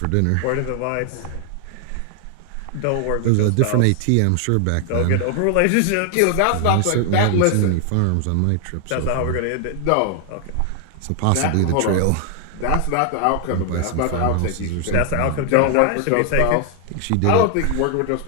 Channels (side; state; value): both; different; correlation 0.00